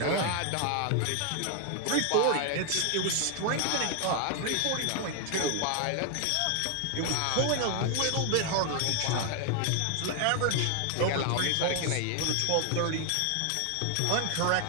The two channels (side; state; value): both; different; correlation 0.00